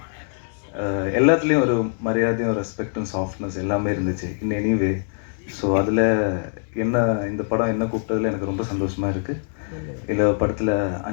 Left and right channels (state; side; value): silent; right; digital silence